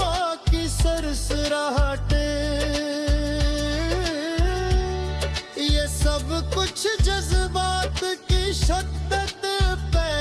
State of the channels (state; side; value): identical; both; correlation 1.00